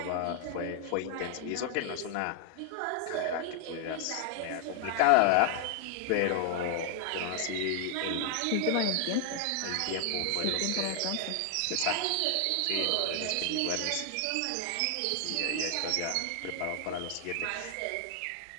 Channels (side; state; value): both; different; correlation 0.00